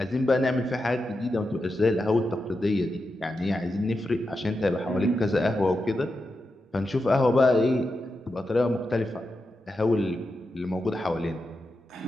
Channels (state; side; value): normal; both; correlation 0.88